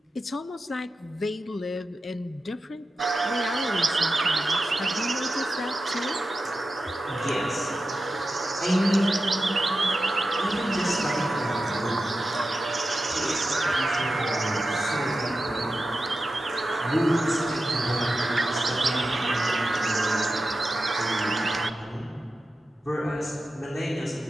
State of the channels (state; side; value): normal; both; correlation 0.92